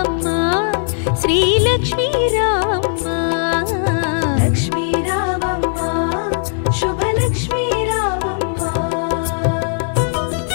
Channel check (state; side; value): silent; right; digital silence